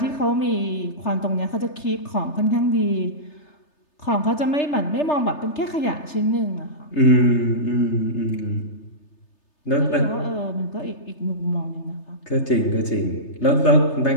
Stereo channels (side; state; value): right; late; 3.3 ms